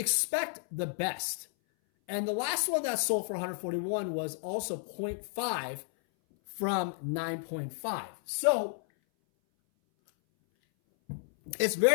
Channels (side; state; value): right; silent; 56 dB below the other